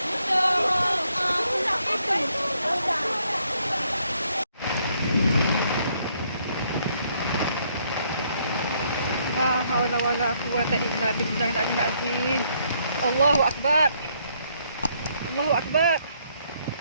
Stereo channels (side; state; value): both; inverted; correlation -0.70